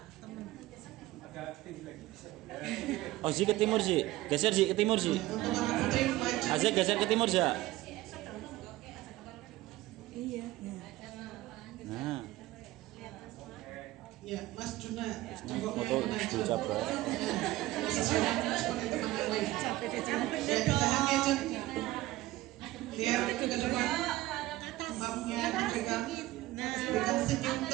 temen. Oh Zi ke timur Zi, geser Zi ke timur Zi. Untuk anak putri maju. Azek geser ke timur Za. Iya. Nah, Ya, Mas Juna jongkoknya foto maju. Bu Cabra. Seperti teman yang lain. Ya, tahan ya Jun. Lihat ke depan. Mapnya dipegang. Berikan senyum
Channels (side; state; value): left; quieter; 17.3 dB